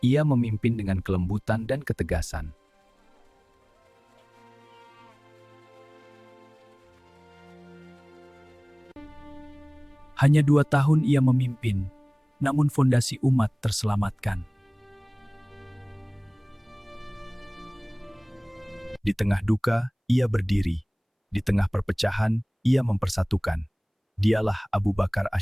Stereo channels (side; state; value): both; identical; correlation 1.00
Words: Ia memimpin dengan kelembutan dan ketegasan. Hanya 2 tahun ia memimpin, namun fondasi umat terselamatkan. Di tengah duka, ia berdiri. Di tengah perpecahan, ia mempersatukan. Dialah Abu Bakar